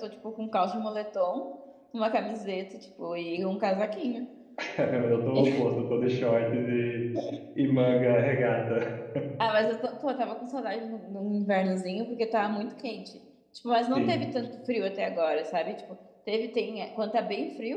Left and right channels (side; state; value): both; identical; correlation 1.00